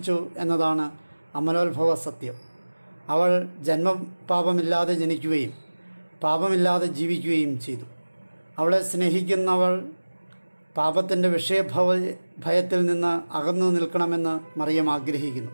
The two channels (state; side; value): inverted; both; correlation -1.00